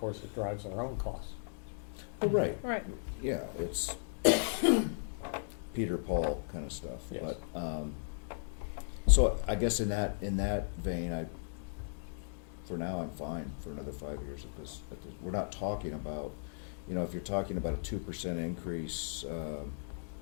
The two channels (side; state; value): right; silent; digital silence